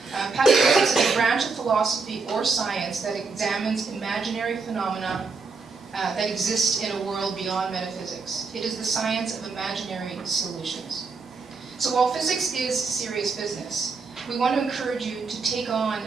Pataphysics is a branch of philosophy or science that examines imaginary phenomena that exist in a world beyond metaphysics. It is the science of imaginary solutions. So while physics is serious business, we want to encourage you to take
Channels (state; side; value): quieter; left; 4.5 dB